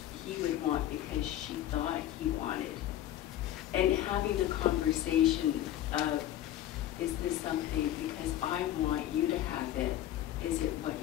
he would want because she thought he wanted. And having the conversation of, is this something because I want you to have it, is it what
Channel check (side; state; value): right; quieter; 12.5 dB